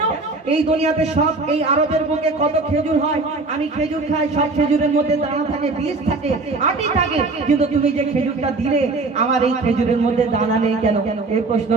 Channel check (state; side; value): quieter; left; 3.6 dB